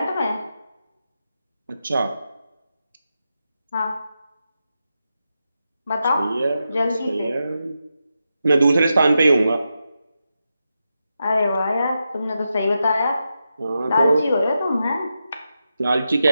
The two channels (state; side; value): inverted; both; correlation -0.88